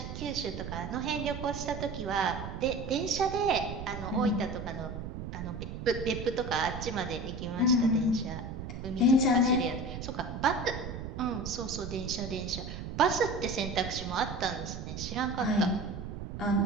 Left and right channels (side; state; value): right; noise; rumble, 7 dB below the sound